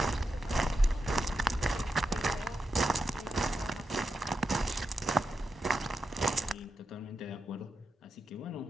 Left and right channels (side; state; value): both; normal; correlation 0.87